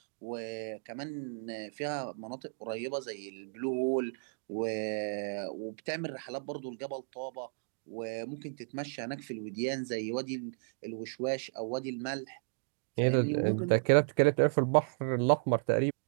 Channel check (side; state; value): left; silent; digital silence